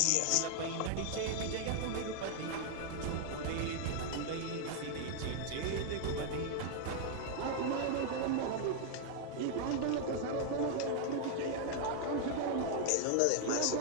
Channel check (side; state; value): both; different; correlation 0.00